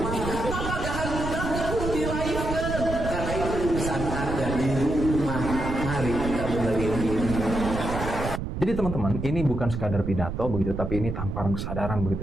Maka jangan mudah perlu dilahirkan, karena itu urusan Anda di rumah. Mari kita benerin ini. Jadi teman-teman, ini bukan sekadar pidato begitu, tapi ini tamparan kesadaran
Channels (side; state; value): right; noise; rumble, 4 dB below the sound